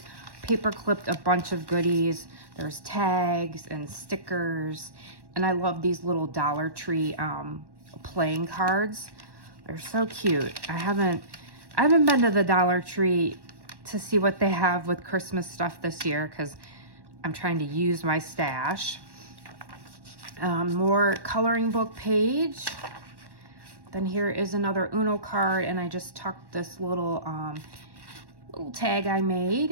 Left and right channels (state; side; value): late; left; 1.1 ms